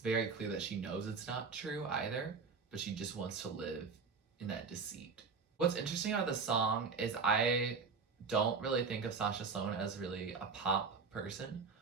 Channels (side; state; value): left; quieter; 5.1 dB